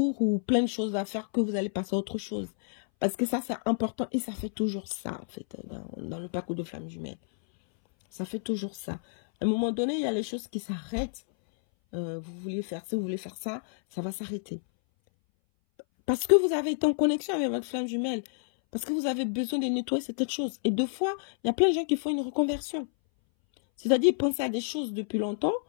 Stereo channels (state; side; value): silent; right; 58 dB below the other